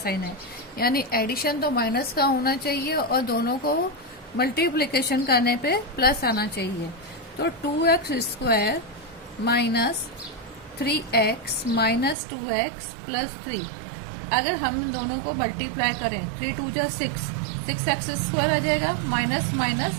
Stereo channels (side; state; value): left; drops out; at 12.2 s